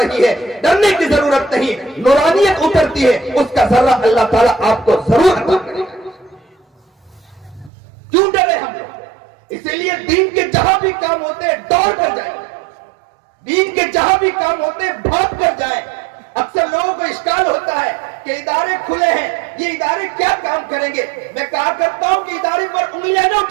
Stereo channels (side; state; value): left; drops out; at 7.7 s